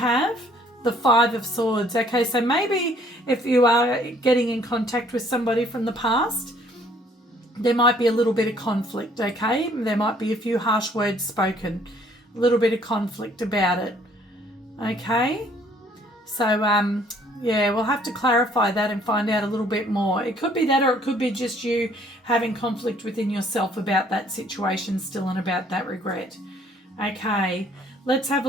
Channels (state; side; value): normal; both; correlation 0.61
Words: the Five of Swords. Okay, so maybe if you are getting in contact with somebody from the past, there might be a little bit of conflict, okay? There might be a few harsh words spoken, a little bit of conflict about it, okay? So, yeah, we'll have to clarify that and find out a little bit more. It could be that, or it could be just you having conflict within yourself about that situation still and about that regret. Okay, let's have a